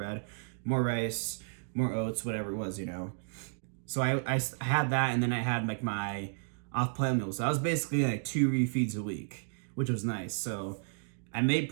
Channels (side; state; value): left; silent; digital silence